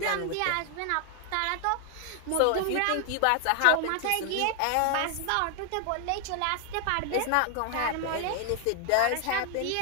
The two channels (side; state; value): both; different; correlation 0.00